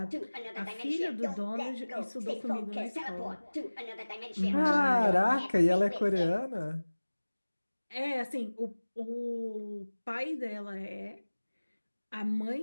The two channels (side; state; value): both; inverted; correlation -1.00